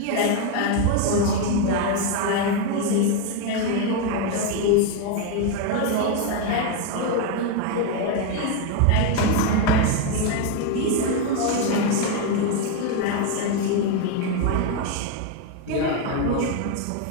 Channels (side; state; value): both; different; correlation 0.02